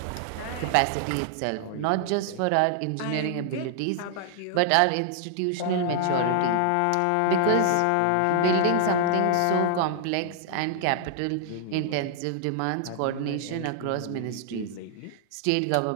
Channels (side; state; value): both; different; correlation 0.00